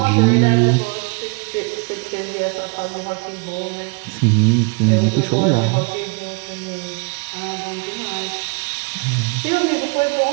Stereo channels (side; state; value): left; quieter; 32.5 dB